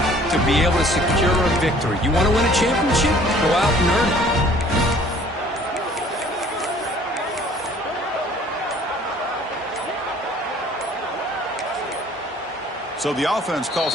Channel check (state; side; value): normal; both; correlation 0.54